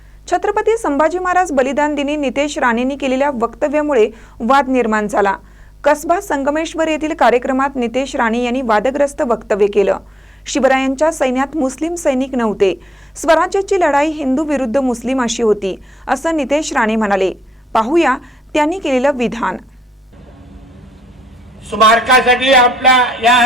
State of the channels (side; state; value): both; normal; correlation 0.81